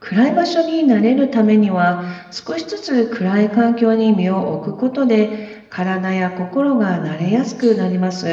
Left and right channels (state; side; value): identical; both; correlation 1.00